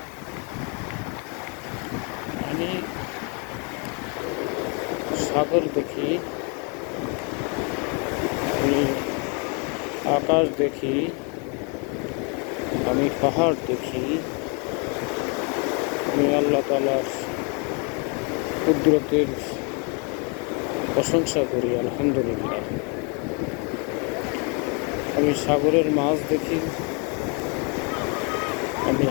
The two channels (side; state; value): right; quieter; 35.0 dB